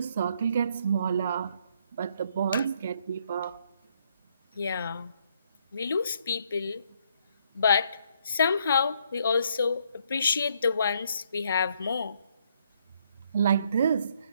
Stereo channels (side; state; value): both; inverted; correlation -0.70